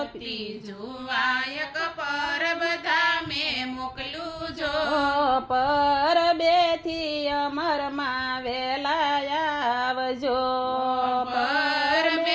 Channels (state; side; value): identical; both; correlation 1.00